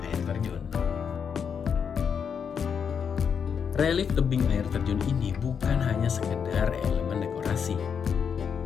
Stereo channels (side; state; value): right; quieter; 7.0 dB